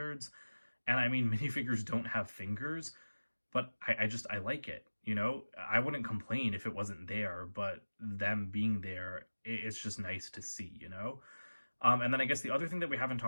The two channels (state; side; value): inverted; both; correlation -1.00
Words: And I mean, minifigures don't have fingers, but I like it, you know? I wouldn't complain if it wasn't there, but them being there, it's just nice to see, you know? And then I guess the other thing that we haven't